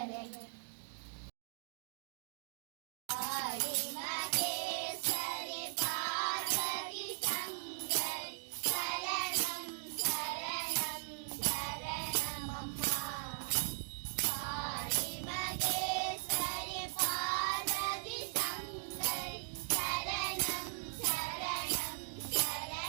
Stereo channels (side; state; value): left; silent; 52 dB below the other